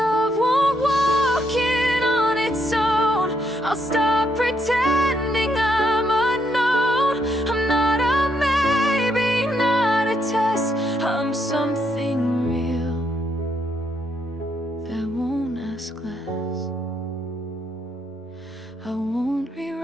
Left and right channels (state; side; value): normal; both; correlation 0.75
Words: won't walk in on its own, I'll stop pretending I'm unknown. I'm not a maybe, not a test. I'm something real that won't ask less. I won't